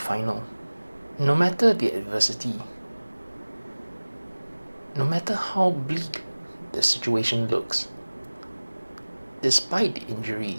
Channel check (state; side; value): inverted; both; correlation -1.00